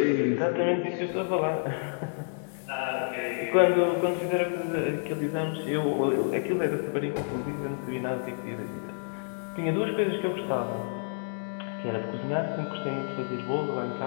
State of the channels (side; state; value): right; silent; digital silence